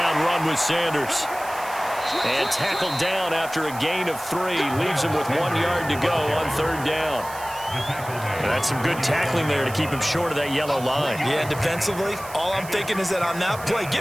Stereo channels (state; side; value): noise; right; hiss, 15 dB below the sound